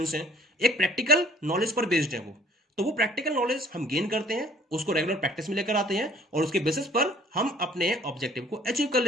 हैं। एक प्रैक्टिकल नॉलेज पर बेस्ड है वो। तो वो प्रैक्टिकल नॉलेज हम गेन करते हैं, उसको रेगुलर प्रैक्टिस में लेकर आते हैं, और उसके बेसिस पर हम अपने ऑब्जेक्टिव को अचीव कर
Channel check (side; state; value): both; normal; correlation 0.56